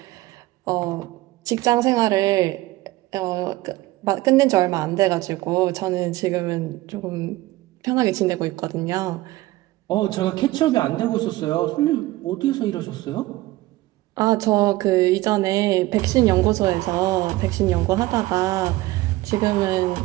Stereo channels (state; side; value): quieter; left; 18.2 dB